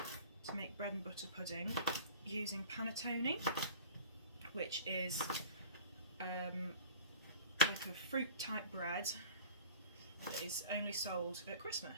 make bread and butter pudding using panettone, which is like a fruit type bread that is only sold at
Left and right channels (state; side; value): inverted; both; correlation -0.43